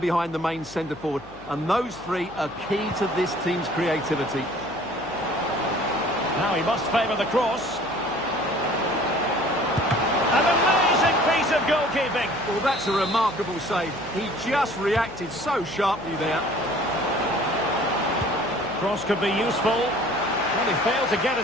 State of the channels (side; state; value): left; noise; hum, 22 dB below the sound